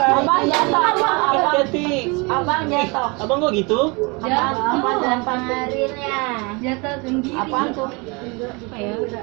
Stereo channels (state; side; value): quieter; left; 28.6 dB